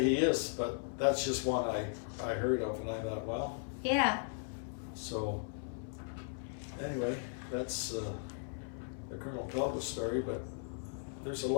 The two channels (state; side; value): silent; right; 53 dB below the other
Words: is. But that's just one I heard of, and I thought, well, Yeah. so anyway, that's the Colonel Talbot story. But there's a